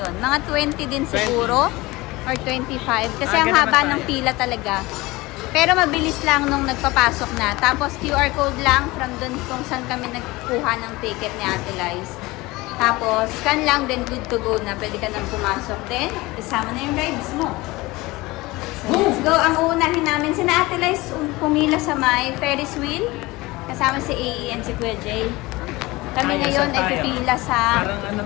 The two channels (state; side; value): quieter; right; 21.1 dB